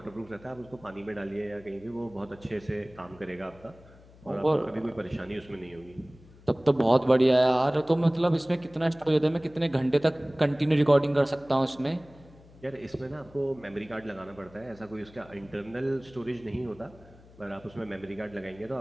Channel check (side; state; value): left; noise; hum, 24 dB below the sound